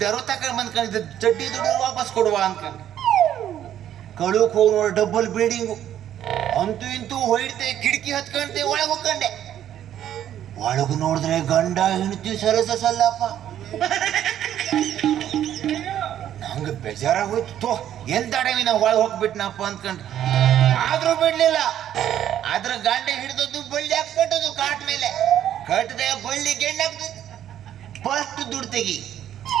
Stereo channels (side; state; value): left; quieter; 11.0 dB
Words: ತಕೊಂಡ್ ಬಂದ್ಕೊಂಡಿದ್ದೆ, ಚಡ್ಡಿ ದುಡ್ಡು ವಾಪಸ್ ಕೊಡುವ ಅನ್ಕೊಂಡು ಕಳುಕ್ ಹೋಗಿ ನೋಡಿ, ಡಬಲ್ ಬಿಲ್ಡಿಂಗು. ಅಂತೂ ಇಂತೂ ಹೊಯ್ತೆ, ಕಿಟಕಿ ಹತ್ಕೊಂಡೆ, ಒಳಗೆ ಹೋಗ್ಕೊಂಡೆ. ಒಳಗು ನೋಡಿದ್ರೆ ಗಂಡ ಹೆಂಡತಿ ಸಲ್ಲಪ್ಪ. ನಂಗೆ ಬೇಜಾರಾಗೋಯ್ತು. ಎಂತ ಅಡವಿ ನಾವು ಒಳಗೆ ಹೋಗ್ಬಿಟ್ನಪ್ಪ ಅಂದ್ಕೊಂಡ್ರೆ, ಆದ್ರೂ ಬಿಡ್ಲಿಲ್ಲ. ಅದ್ರ ಗಂಡ ಹಿಡಿದದ್ದು ಬಳ್ಳಿ ಹಾಕ್ಬಿಟ್ಟದು ಕಾಟ್ ಮೇಲೆ. ಕಟ್ಟದೆ ಬಳ್ಳಿ ಗೆಂಡ ಹಾಕ್ತದೆ. ಫಸ್ಟ್ ದುಡ್ಡು ತೆಗಿ,